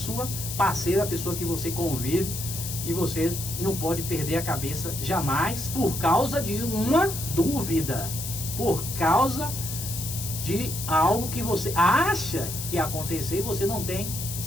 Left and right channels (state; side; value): noise; left; hiss, 6 dB below the sound